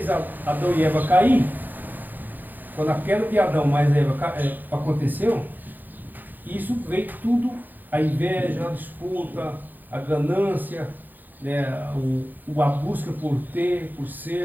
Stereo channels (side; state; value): left; late; 0.086 ms